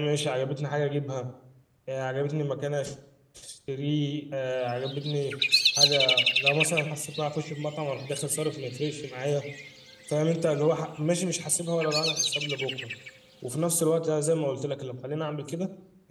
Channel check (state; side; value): identical; both; correlation 1.00